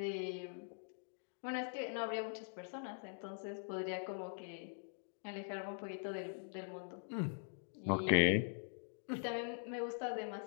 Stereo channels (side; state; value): right; silent; digital silence